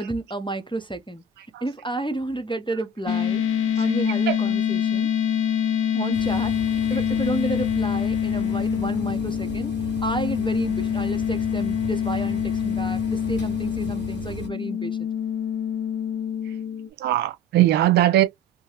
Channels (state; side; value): normal; both; correlation 0.43